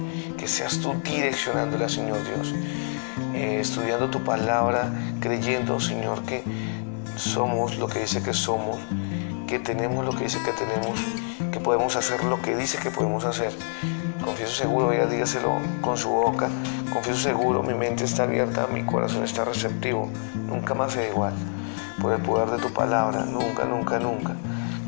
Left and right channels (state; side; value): silent; right; 61 dB below the other